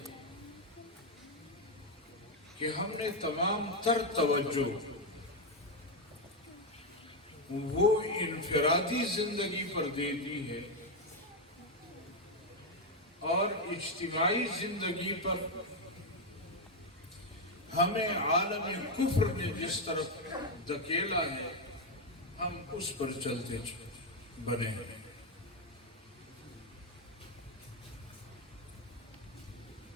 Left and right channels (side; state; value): both; normal; correlation 0.04